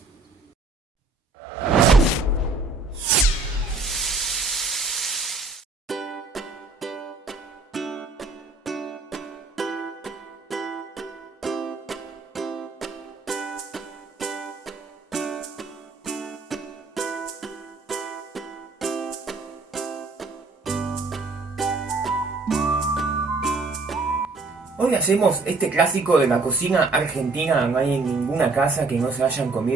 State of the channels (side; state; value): left; quieter; 3.7 dB